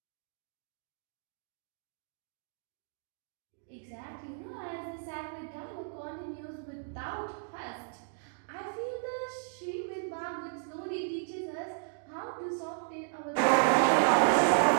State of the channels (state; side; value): silent; left; digital silence